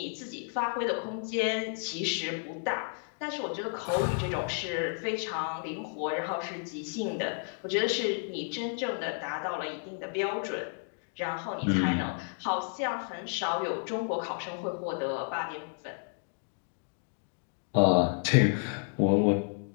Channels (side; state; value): right; silent; 57 dB below the other